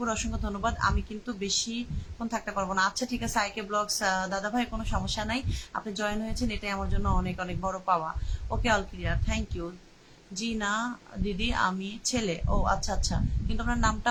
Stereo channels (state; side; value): identical; both; correlation 1.00